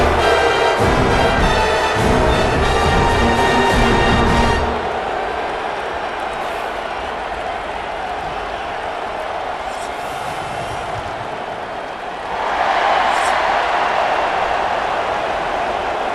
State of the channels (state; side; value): identical; both; correlation 1.00